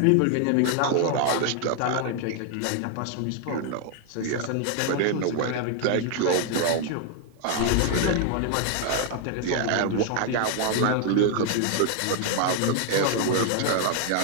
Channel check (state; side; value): different; both; correlation 0.00